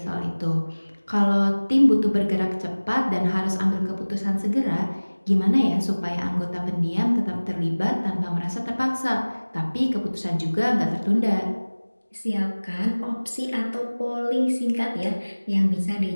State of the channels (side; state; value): both; inverted; correlation -1.00